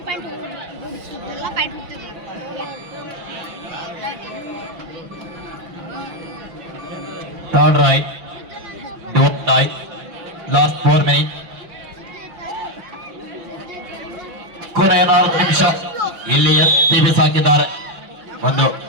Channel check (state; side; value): late; left; 6.0 ms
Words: Turn right, don't die. Last 4 minutes. ಕೊನೆಯ 4 ನಿಮಿಷ. ಇಲ್ಲಿ ಎತ್ತಿ ಬಿಸಾಕಿದ್ದಾರೆ. ಒಂದು